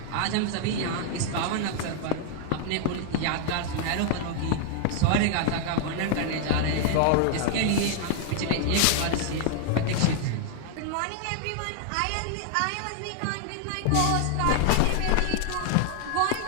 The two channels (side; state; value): both; different; correlation 0.00